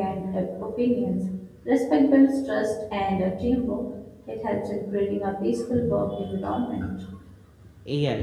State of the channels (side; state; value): both; identical; correlation 1.00